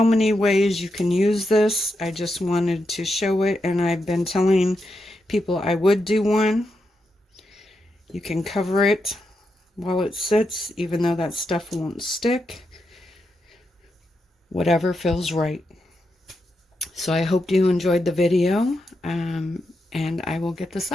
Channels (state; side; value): normal; both; correlation 0.85